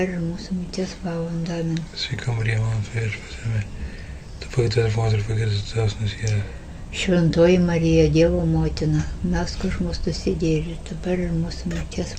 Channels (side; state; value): both; identical; correlation 1.00